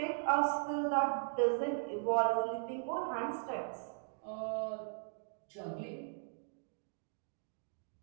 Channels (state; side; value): silent; left; digital silence